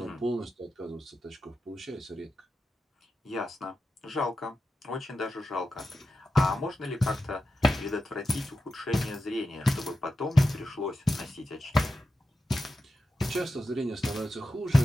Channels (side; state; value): both; normal; correlation 0.91